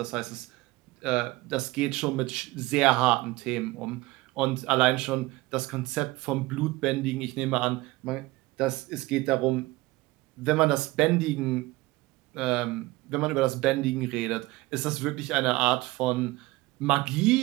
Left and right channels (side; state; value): left; quieter; 20.3 dB